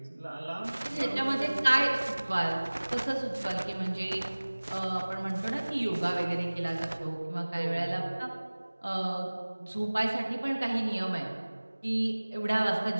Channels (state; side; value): inverted; both; correlation -1.00